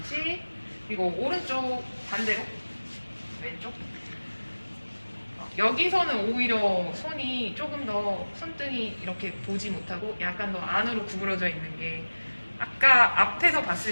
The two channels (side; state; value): both; inverted; correlation -1.00